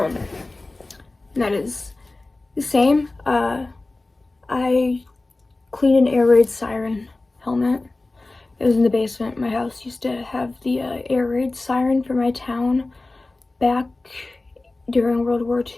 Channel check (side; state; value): right; quieter; 3.1 dB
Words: that is the same. I cleaned an air raid siren helmet. It was in the basement. My house used to have the air raid siren for my town back during World War